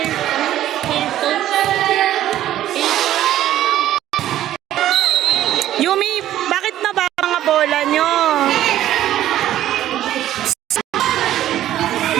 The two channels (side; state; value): left; quieter; 12.8 dB